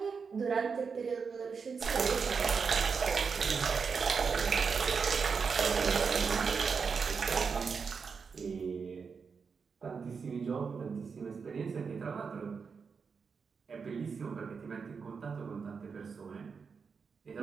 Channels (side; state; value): left; quieter; 5.6 dB